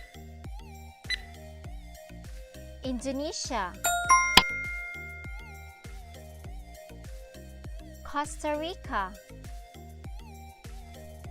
Indonesia, Costa Rica,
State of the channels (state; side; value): identical; both; correlation 1.00